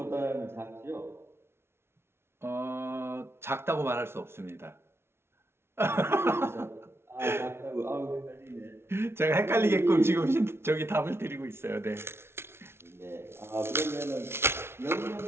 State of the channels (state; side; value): late; left; 0.12 ms